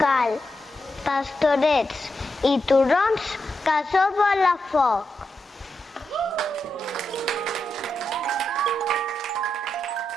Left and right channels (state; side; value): normal; both; correlation 0.86